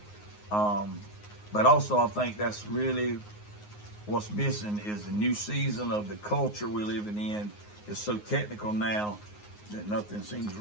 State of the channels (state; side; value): late; right; 9.6 ms